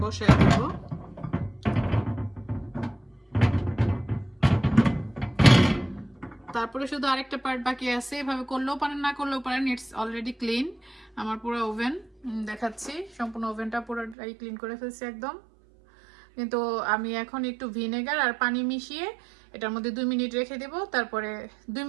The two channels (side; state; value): left; drops out; at 14.2 s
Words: বসায় দেব। তারপরে শুধু আরেকটা পার্ট বাকি আছে, এভাবে করলেও পারেন না করলেও পারেন, ইটস অলরেডি ক্লিন। আমার পুরো ওভেন দেখাচ্ছি, সম্পূর্ণ ওভেনটা পুরোটাই ক্লিন করে ফেলছি একদম। কিন্তু আমি এখন একটু ভিনেগার আর পানি মিশিয়ে এটার মধ্যে 2 মিনিট রেখে দেব, তারপরে 2